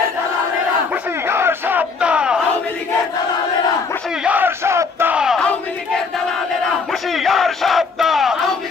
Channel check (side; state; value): right; quieter; 4.8 dB